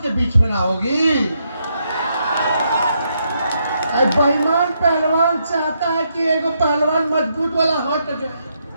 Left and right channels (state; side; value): inverted; both; correlation -0.78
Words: के बीच में ना होगी। बेईमान पहलवान चाहता है कि एगो पहलवान मजबूत वाला हट जाए,